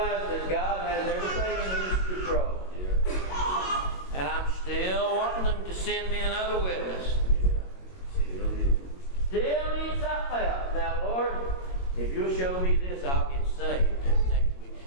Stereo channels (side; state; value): right; late; 22 ms